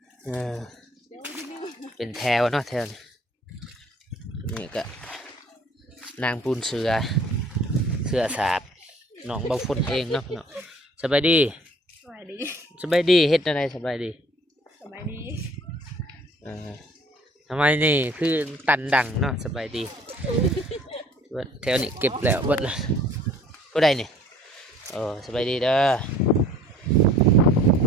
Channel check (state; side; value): normal; both; correlation 0.54